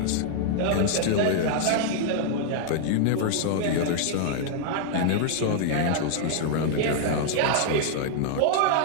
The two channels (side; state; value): both; different; correlation -0.01